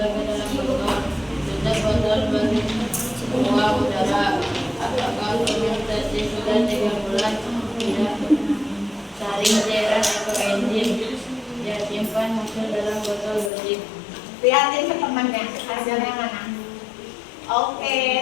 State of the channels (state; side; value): drops out; right; at 13.5 s